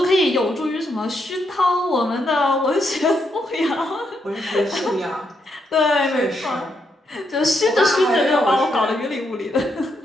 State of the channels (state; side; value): normal; both; correlation 0.79